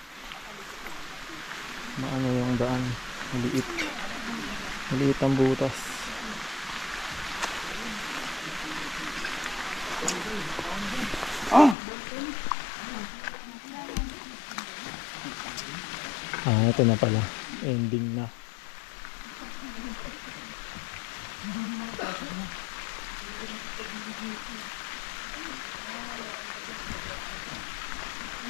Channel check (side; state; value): right; drops out; at 11.8 s